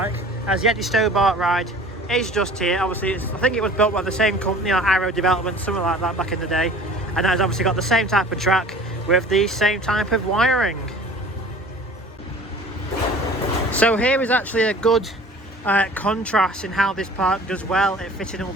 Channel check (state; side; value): normal; both; correlation 0.45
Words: as the Eddie Stobart ride is just here. Obviously I think it was built by the same company, like Arrow Development, something like that back in the day, and has obviously got the same type of track with the same type of wiring. So here is actually a good contrast in how this park does well at fitting all